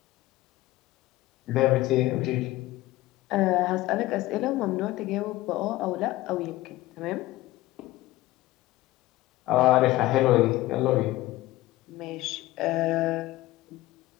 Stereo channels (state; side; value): quieter; right; 17.4 dB